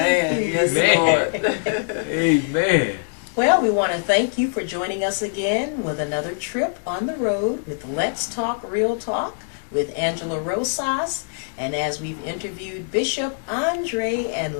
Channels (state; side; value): silent; right; 57 dB below the other